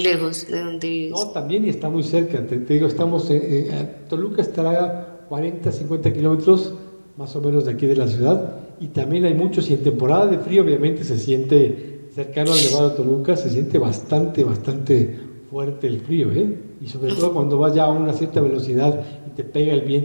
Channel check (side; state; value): both; inverted; correlation -1.00